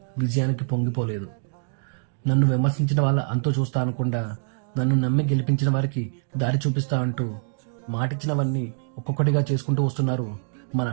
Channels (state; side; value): silent; left; digital silence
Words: విజయానికి పొంగిపోలేదు. నన్ను విమర్శించిన వాళ్ళ అంతో చూస్తా అనకుండా నన్ను నమ్మి గెలిపించిన వారికి దారి చూపిస్తా అంటూ మాటిచ్చినవన్నీ ఒక్కొక్కటిగా చేసుకుంటూ వస్తున్నారు మన